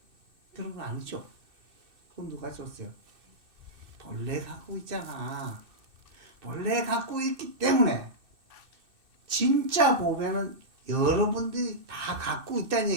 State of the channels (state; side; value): late; left; 2.6 ms